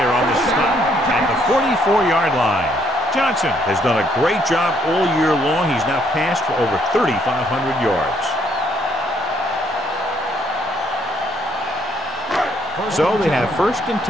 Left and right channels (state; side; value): normal; both; correlation 0.69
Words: on the stop at the 44-yard line. Johnson has done a great job all year long. He's now passed for over 3,500 yards. So they have 1st and